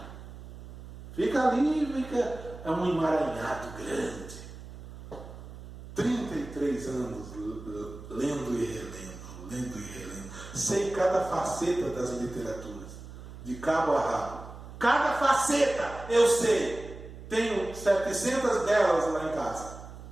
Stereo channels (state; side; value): noise; right; hum, 14 dB below the sound